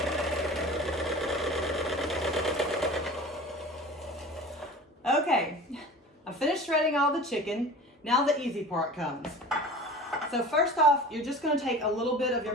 Okay, I finished shredding all the chicken. Now the easy part comes. So first off, you're just going to take a little bit of your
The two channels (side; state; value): both; normal; correlation 0.38